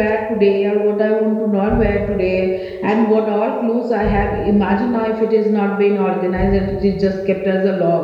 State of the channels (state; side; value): identical; both; correlation 1.00